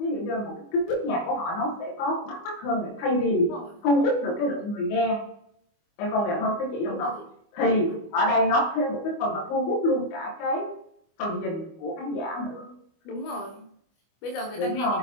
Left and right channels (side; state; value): right; late; 25 ms